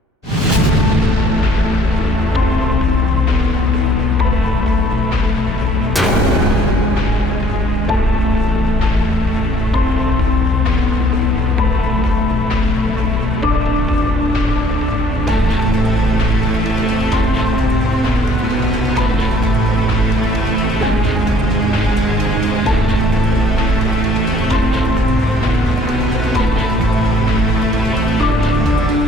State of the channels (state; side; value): normal; both; correlation 0.59